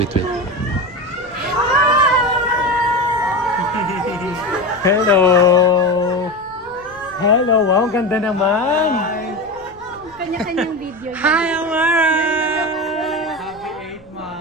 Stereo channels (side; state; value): left; noise; rumble, 27 dB below the sound